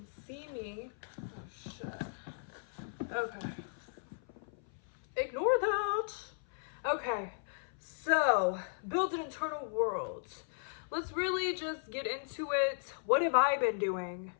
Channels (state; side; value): silent; right; 54 dB below the other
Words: see me. Oh shit. Okay. Ignore that. Okay, so build an internal world. Let's really just get into it. What have I been doing?